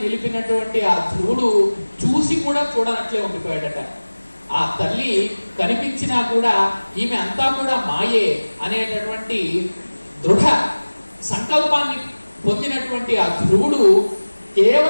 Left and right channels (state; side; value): inverted; both; correlation -1.00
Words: నిలిపినటువంటి ఆ ధ్రువుడు చూసి కూడా చూడనట్లే ఉండిపోయాడట. ఆ తల్లి కనిపించినా కూడా ఈమె అంతా కూడా మాయే అనేటటువంటి దృఢ సంకల్పాన్ని పొందినటువంటి ఆ ధ్రువుడు